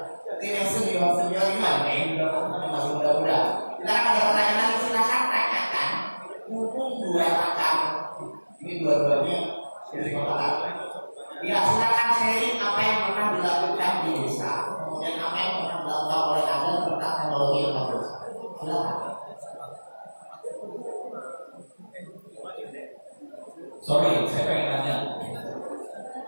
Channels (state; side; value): inverted; both; correlation -1.00